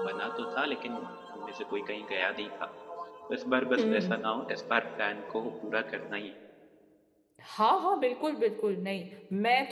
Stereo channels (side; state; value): both; identical; correlation 1.00